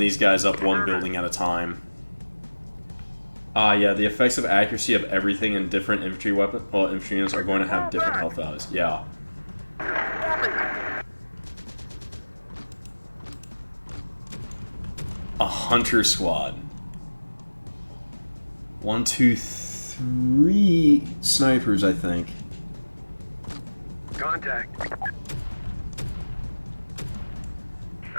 guys up one building at a time. Yeah, the effects of accuracy of everything in different infantry weapon, well, infantry units are going to have different health values. Yeah. A hunter squad. 1, 2, 3 snipers, I think. Contact.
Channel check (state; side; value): inverted; both; correlation -1.00